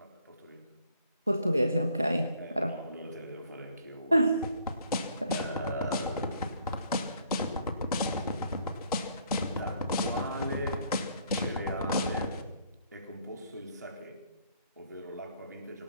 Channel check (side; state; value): both; inverted; correlation -0.64